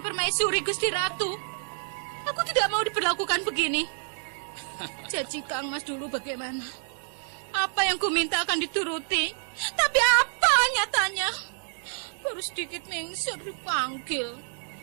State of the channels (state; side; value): silent; left; 59 dB below the other